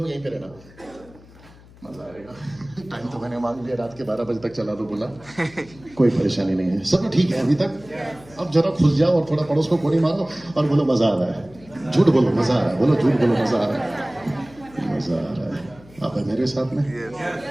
यहीं पे रहना, मजा आएगा। टाइम तो मैंने मांग लिया, रात के 12 बजे तक चला दो बोला, कोई परेशानी नहीं है, सब ठीक है अभी तक। अब जरा खुल जाओ और थोड़ा पड़ोस को कोड़ी मारो और बोलो मजा आ रहा है। झूठ बोलो मजा आ रहा है, बोलो झूठ बोलो मजा आ रहा है, मजा आ रहा है। आप है मेरे साथ में।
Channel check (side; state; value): left; noise; hum, 23 dB below the sound